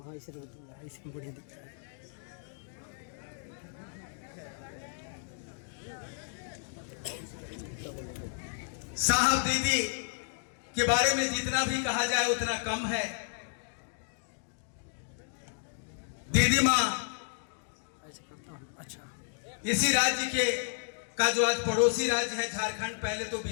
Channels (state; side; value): silent; right; digital silence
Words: साहब दीदी के बारे में जितना भी कहा जाए उतना कम है। दीदी माँ अच्छा इसी राज्य के का जो आज पड़ोसी राज्य है झारखंड, पहले तो